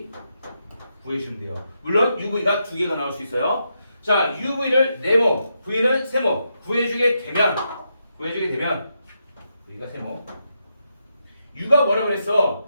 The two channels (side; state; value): both; inverted; correlation -0.83